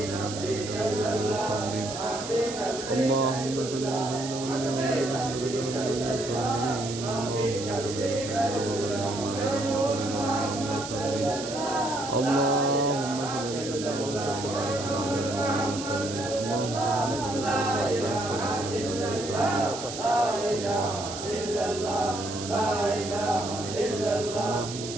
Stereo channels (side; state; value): right; noise; hiss, 9 dB below the sound